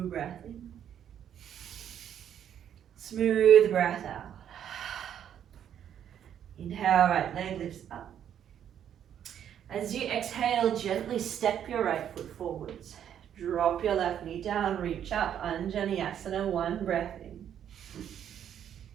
breath in. Smooth breath out. Inhale, right leg lifts up. As you exhale, gently step your right foot forwards. Drop your left knee down, reach up, Anjaneyasana, one breath in.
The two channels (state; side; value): quieter; left; 9.5 dB